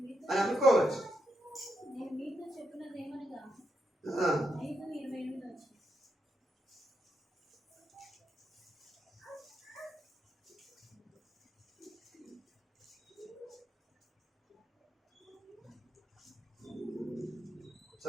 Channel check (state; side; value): normal; both; correlation 0.83